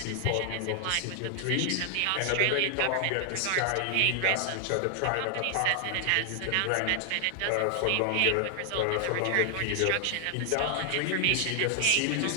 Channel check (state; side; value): different; both; correlation 0.00